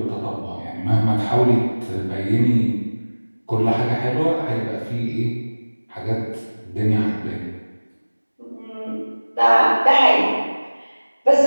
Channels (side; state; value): both; inverted; correlation -1.00